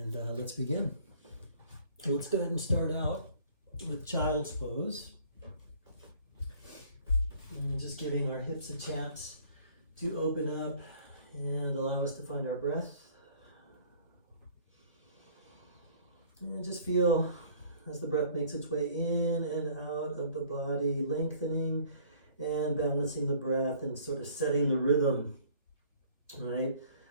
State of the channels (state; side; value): inverted; both; correlation -0.54